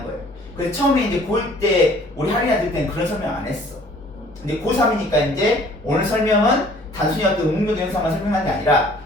거예요. 그래서 처음에 이제 고1 때 우리 할인아 들 때는 그런 설명 안 했어. 근데 고3이니까 이제 오늘 설명은 단순히 어떤 음변동 현상만 설명한 게 아니라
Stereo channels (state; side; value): normal; both; correlation 0.55